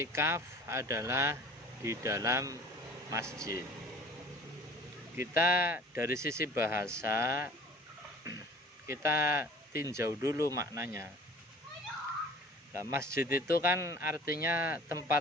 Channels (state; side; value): normal; both; correlation 0.46